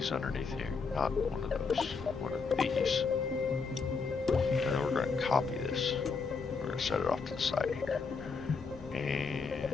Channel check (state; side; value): quieter; right; 4.9 dB